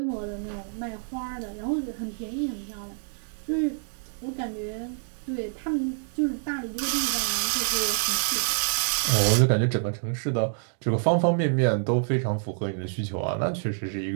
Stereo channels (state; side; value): silent; left; digital silence